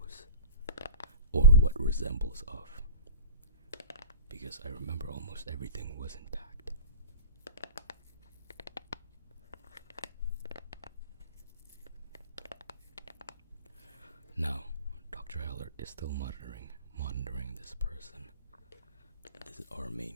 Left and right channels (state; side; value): inverted; both; correlation -0.35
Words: or what resembles of, because I remember almost everything was intact. Now, Dr. Heller is still monitoring this person. This is our